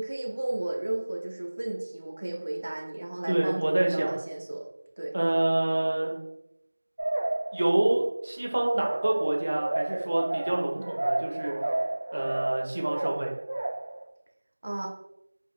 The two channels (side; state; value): both; inverted; correlation -1.00